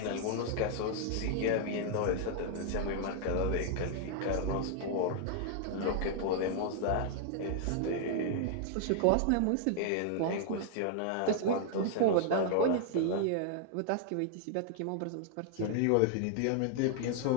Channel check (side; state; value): both; different; correlation 0.00